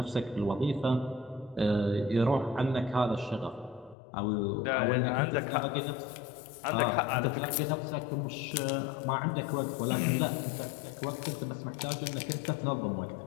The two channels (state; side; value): drops out; right; at 4.0 s